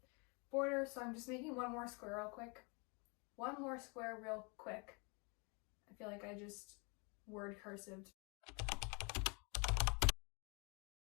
border, so I'm just making one more square real quick. One more square real quick. I feel like I just word cursived.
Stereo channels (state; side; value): quieter; right; 32.4 dB